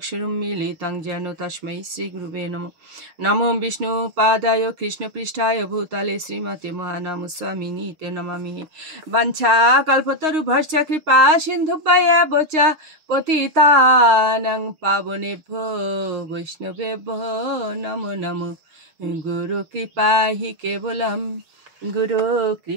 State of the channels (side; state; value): left; late; 6.4 ms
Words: যেন তস্मै শ্রীগুরুবে নমঃ। নমো বিষ্ণুপাদায় কৃষ্ণপৃষ্ঠায় ভূতলে শ্রীমতে মহানামস্বামিনীতে নমামি। বাঞ্ছাকল্পতরুভ্যশ্চ কৃপা সিন্ধুভ্যেব চ পতিতানাং পাবনেভ্যো বৈষ্ণবেভ্যো নমো নমো। গুরু কৃপা হি কেবলম, গুরু